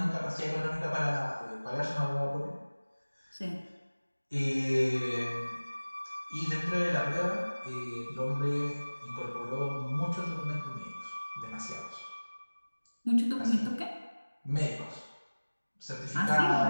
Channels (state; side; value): inverted; both; correlation -1.00